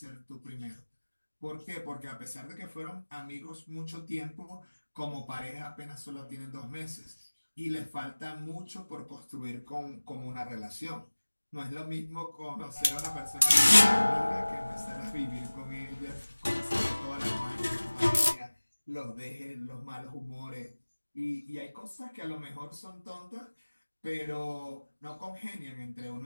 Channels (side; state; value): both; inverted; correlation -1.00